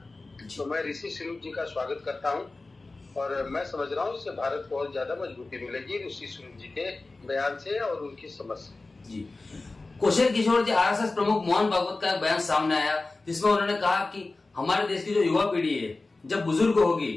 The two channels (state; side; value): quieter; right; 3.4 dB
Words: तो मैं ऋषि सुनक जी का स्वागत करता हूं और मैं समझ रहा हूं इससे भारत को और ज्यादा मजबूती मिलेगी ऋषि सुनक जी के बयान से और उनकी समझ से। जी। कौशल किशोर जी, आरएसएस प्रमुख मोहन भागवत का एक बयान सामने आया जिसमें उन्होंने कहा कि हमारे देश की जो युवा पीढ़ी है जब बुजुर्ग होगी